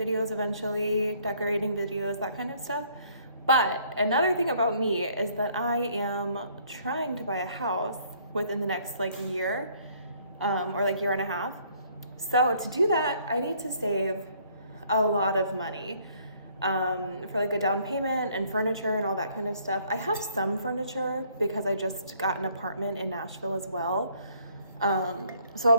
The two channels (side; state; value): both; inverted; correlation -0.63